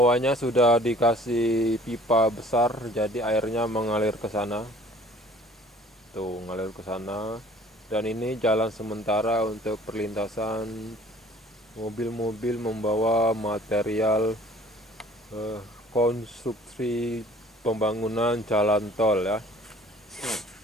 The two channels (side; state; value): both; normal; correlation 0.51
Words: sudah dikasih pipa besar, jadi airnya mengalir ke sana. Tuh, ngalir ke sana. Dan ini jalan sementara untuk perlintasan mobil-mobil membawa material konstruksi pembangunan jalan tol ya.